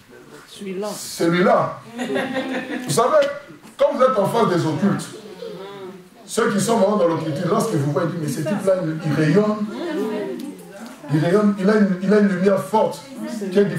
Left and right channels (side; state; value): both; identical; correlation 1.00